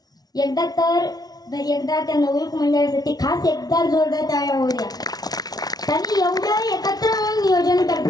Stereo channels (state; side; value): late; right; 0.19 ms